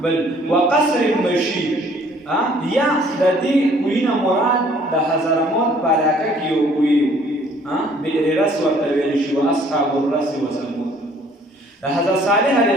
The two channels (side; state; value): both; normal; correlation 0.58